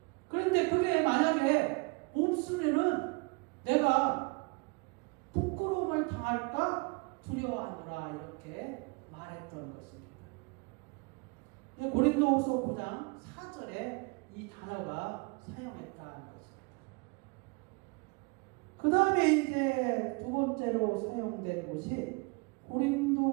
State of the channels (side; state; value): left; quieter; 29.8 dB